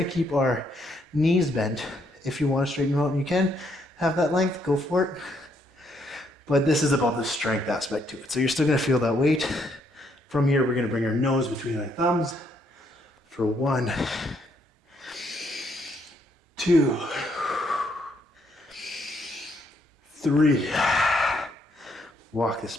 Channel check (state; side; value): normal; both; correlation 0.72